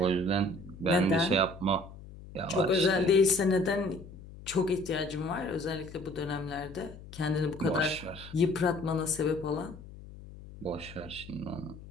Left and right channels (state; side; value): noise; left; hum, 16 dB below the sound